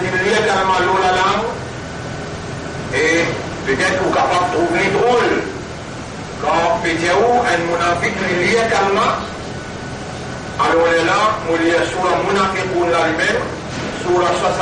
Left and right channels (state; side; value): identical; both; correlation 1.00